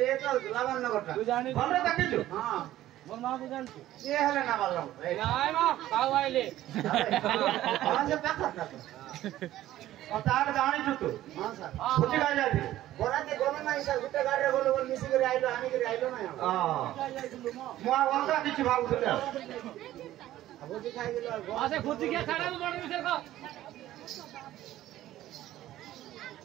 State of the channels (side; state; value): left; quieter; 14.1 dB